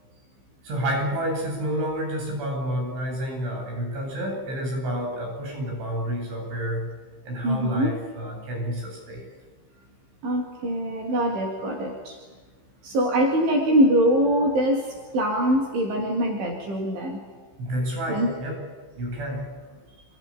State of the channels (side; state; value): left; late; 15 ms